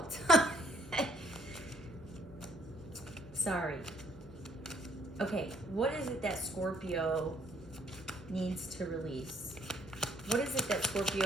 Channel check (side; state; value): both; normal; correlation 0.65